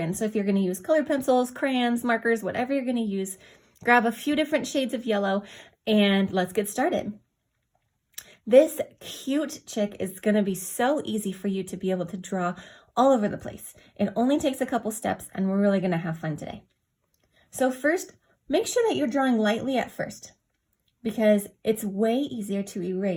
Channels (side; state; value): both; identical; correlation 1.00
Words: So if you're going to use colored pencils, crayons, markers, whatever you're going to use, grab a few different shades of yellow and let's get started. This cute chick is going to be so easy for you to be able to draw all over the place. It only takes a couple steps and we're really going to have fun today. So first, make sure that you're drawing lightly at first because it's way easier to